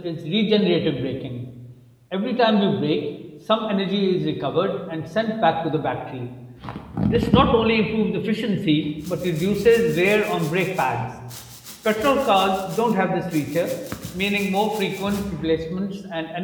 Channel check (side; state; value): both; identical; correlation 1.00